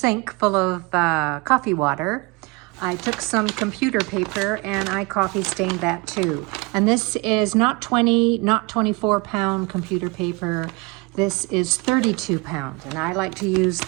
full of coffee water, I took some computer paper and I coffee stained that too. And this is not 24 pound computer paper. This is 32 pound. And I like to use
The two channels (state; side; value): quieter; left; 26.8 dB